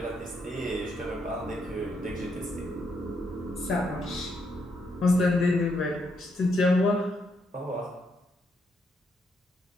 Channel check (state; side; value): normal; both; correlation 0.77